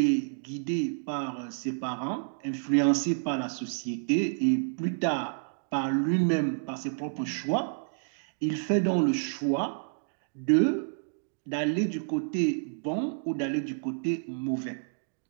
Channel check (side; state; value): left; silent; digital silence